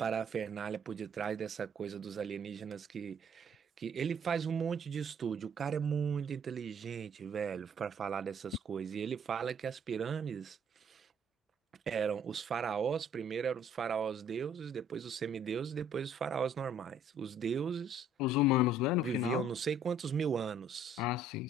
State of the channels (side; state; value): both; normal; correlation 0.60